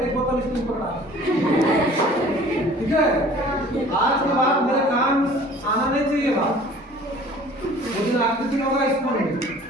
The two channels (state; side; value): normal; both; correlation 0.49